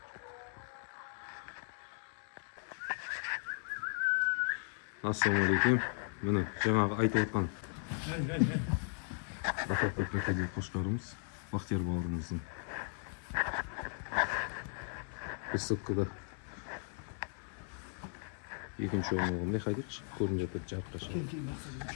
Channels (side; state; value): right; silent; 53 dB below the other